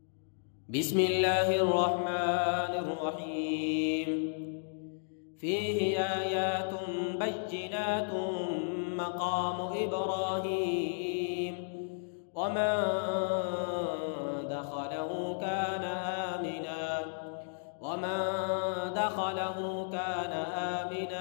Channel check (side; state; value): right; silent; digital silence